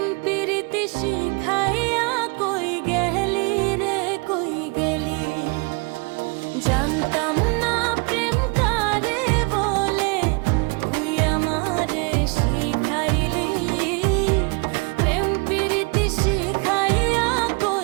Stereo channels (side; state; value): left; quieter; 30.9 dB